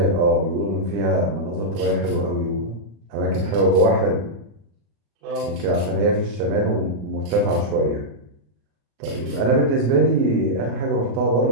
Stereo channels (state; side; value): late; left; 37 ms